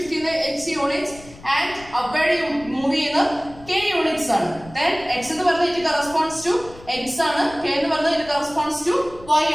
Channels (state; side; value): noise; left; rumble, 20 dB below the sound